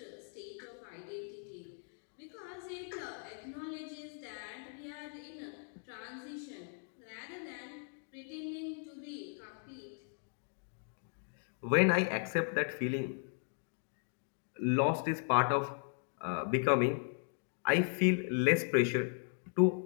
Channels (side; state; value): right; silent; 53 dB below the other